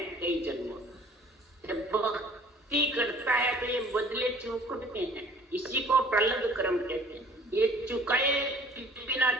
कई जन्मों। जब भक्ति करता है तो ये बदले चुकते हैं, इसी को प्रलंब कर्म कहते हैं। ये चुकाए बिना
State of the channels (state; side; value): normal; both; correlation 0.51